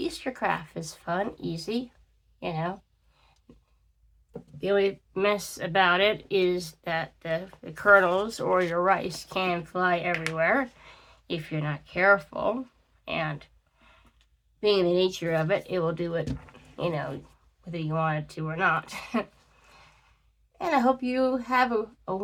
craft. It's fun, easy, The only mess about it is that the kernels or your rice can fly everywhere if you're not careful. And being the nature of it, it will do it, whether you want it to or not. And I hope you have a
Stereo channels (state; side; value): identical; both; correlation 1.00